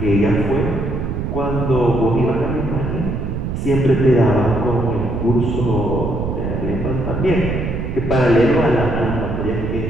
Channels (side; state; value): right; noise; rumble, 4 dB below the sound